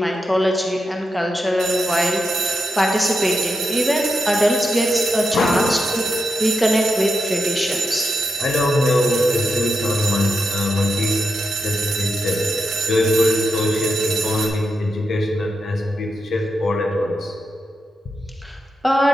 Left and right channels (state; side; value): normal; both; correlation 0.86